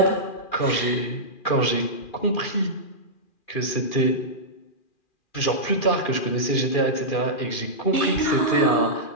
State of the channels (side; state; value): right; late; 2.4 ms